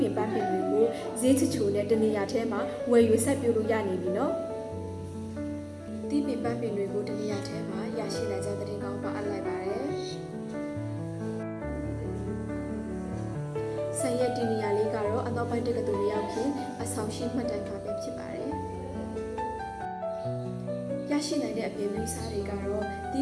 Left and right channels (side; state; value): both; identical; correlation 1.00